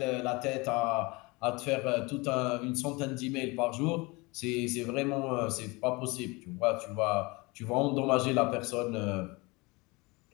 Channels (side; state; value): right; quieter; 25.3 dB